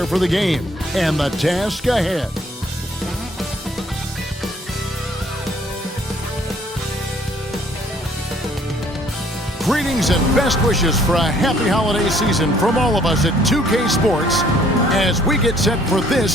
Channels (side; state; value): both; normal; correlation 0.61